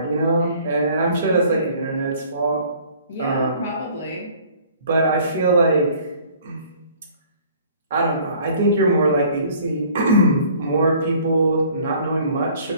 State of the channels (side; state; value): both; inverted; correlation -0.54